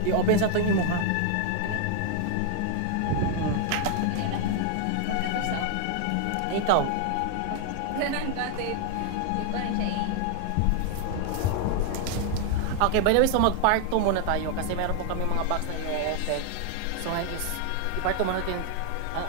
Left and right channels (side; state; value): both; different; correlation 0.00